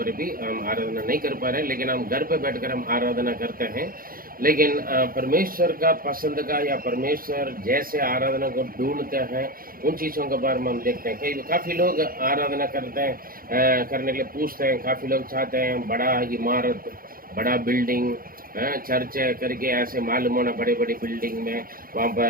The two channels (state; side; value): late; left; 0.42 ms